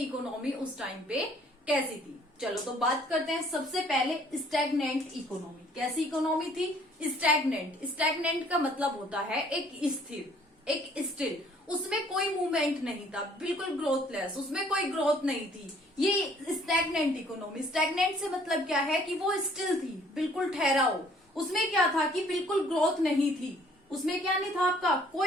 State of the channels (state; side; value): normal; both; correlation 0.59